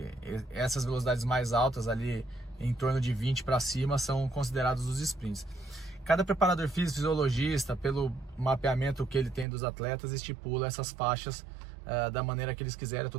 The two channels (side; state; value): left; drops out; at 9.5 s